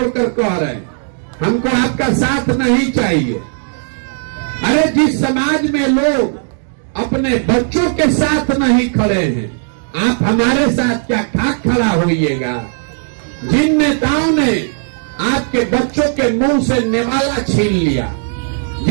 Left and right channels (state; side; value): silent; left; 62 dB below the other